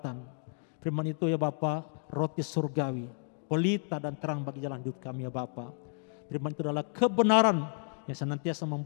firman itu ya Bapa, roti surgawi, pelita dan terang bagi jalan hidup kami ya Bapa. Firman itu adalah kebenaran yang senantiasa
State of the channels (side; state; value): right; silent; digital silence